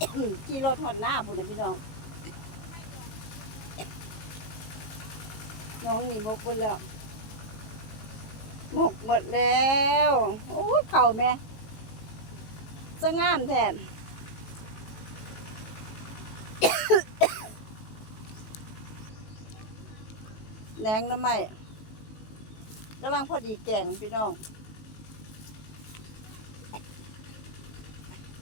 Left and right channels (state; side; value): late; right; 19 ms